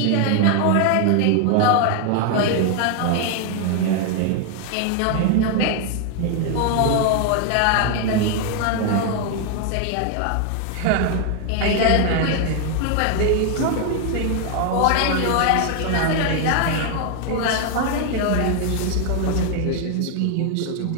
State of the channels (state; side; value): different; both; correlation 0.00